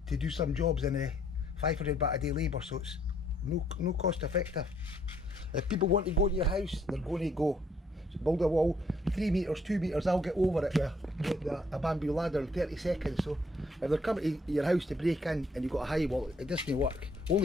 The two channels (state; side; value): normal; both; correlation 0.67